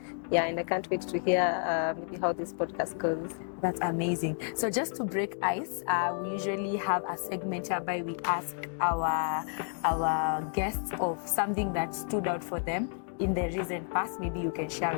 Yeah, and I can't wait to hear maybe how this podcast goes. That's amazing. So just to break ice, we usually have a segment whereby we ask our guests of something that stood out for them in the recent past. Maybe you can share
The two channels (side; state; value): right; silent; 57 dB below the other